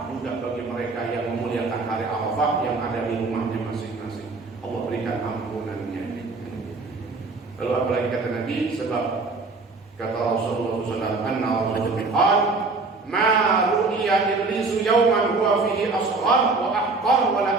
juga bagi mereka yang memuliakan hari Arafah yang ada di rumahnya masing-masing. Allah berikan ampunannya. Lalu apalagi kata Nabi? Sebab kata Rasulullah SAW, anna Rasulullah qala ma ru'iya iblisu yawman huwa fihi asghar wa ahqar wa la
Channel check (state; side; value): quieter; left; 3.8 dB